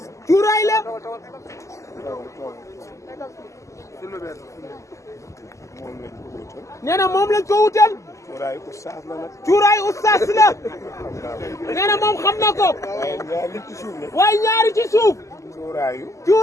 cuuraay la. moom lañ ko wutal. nee na moom lañ ko wutal. cuuraay ustaas la nag. cuuraay ustaas la. nee na moom xam na ko. waaye ñaari ci suuf la. waaye ñaari ci suuf. cuuraayu.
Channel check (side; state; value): right; late; 0.15 ms